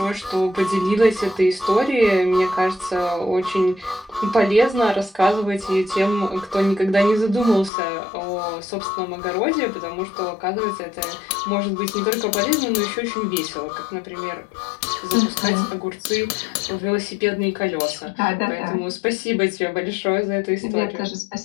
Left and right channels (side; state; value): right; drops out; at 7.7 s